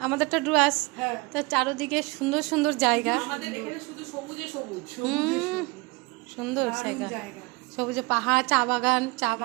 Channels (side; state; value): left; quieter; 26.0 dB